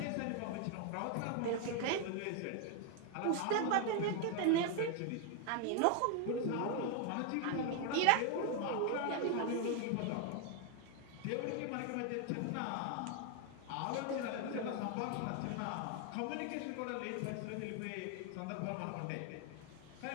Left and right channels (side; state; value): both; different; correlation 0.00